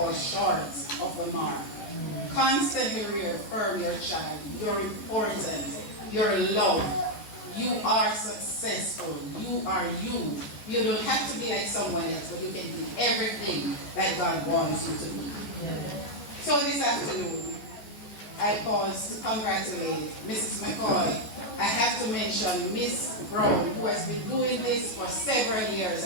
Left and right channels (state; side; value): late; right; 14 ms